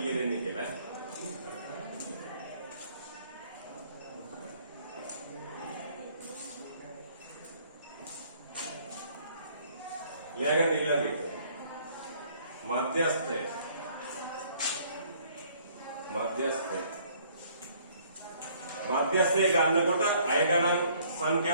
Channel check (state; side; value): inverted; both; correlation -0.60